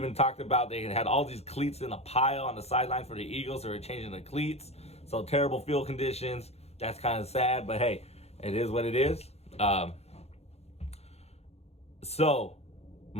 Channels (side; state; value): right; late; 0.30 ms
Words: talked about they had all these cleats in a pile on the sideline for the Eagles. They were changing the cleats. So terrible field conditions. That's kind of sad, but hey, it is what it is. So